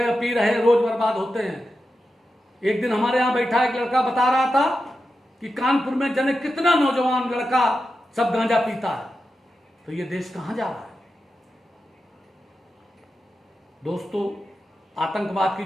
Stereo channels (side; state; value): both; normal; correlation 0.90